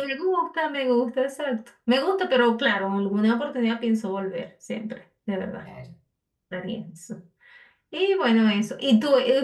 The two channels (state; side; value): identical; both; correlation 1.00